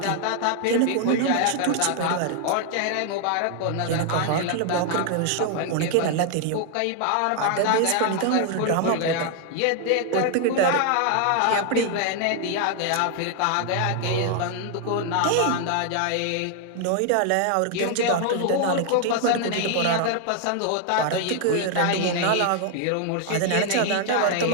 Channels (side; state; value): both; different; correlation 0.00